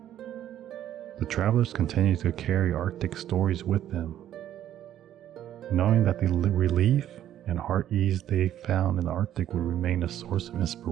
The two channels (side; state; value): left; quieter; 11.5 dB